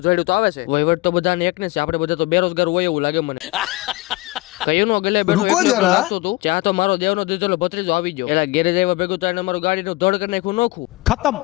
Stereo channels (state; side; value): quieter; right; 21.1 dB